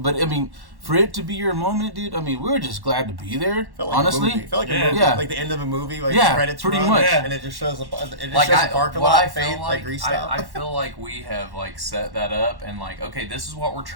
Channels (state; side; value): late; left; 1.1 ms